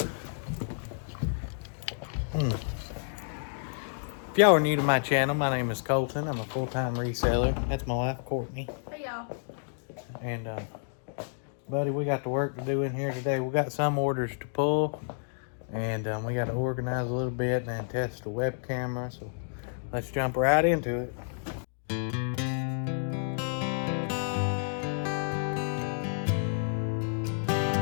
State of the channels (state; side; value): silent; right; digital silence